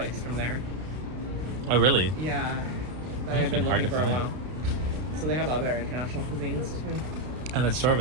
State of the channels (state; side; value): late; left; 32 ms